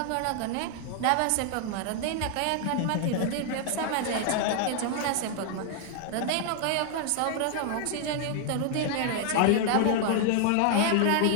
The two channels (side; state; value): both; different; correlation 0.00